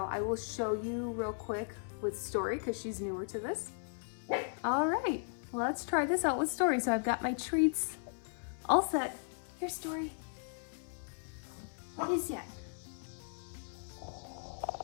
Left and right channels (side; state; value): right; silent; 53 dB below the other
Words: I will show you real quick with Story because she's newer to this. All right, let's try this out with Story. So I've got my treats all set. Here's Story. What is that?